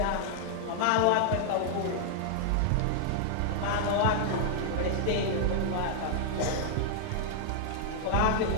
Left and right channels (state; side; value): different; both; correlation -0.01